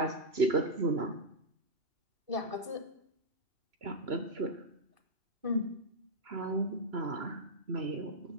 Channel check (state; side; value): late; left; 3.0 ms